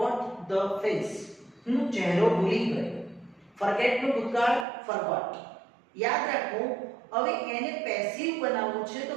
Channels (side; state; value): left; drops out; at 4.7 s